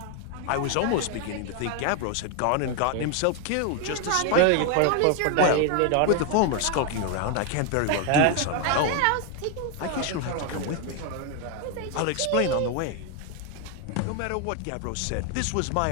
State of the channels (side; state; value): both; different; correlation 0.01